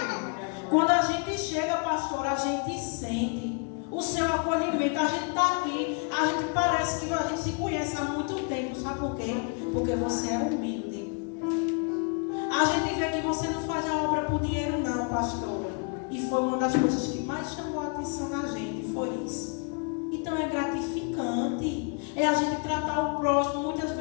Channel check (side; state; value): right; quieter; 38.1 dB